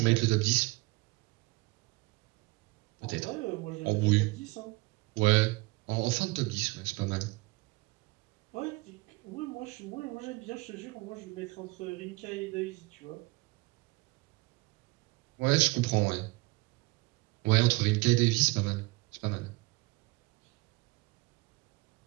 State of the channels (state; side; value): quieter; left; 23.7 dB